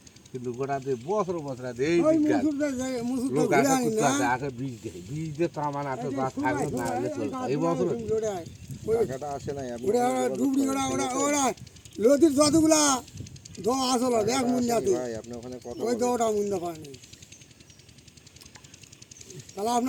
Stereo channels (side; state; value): both; identical; correlation 1.00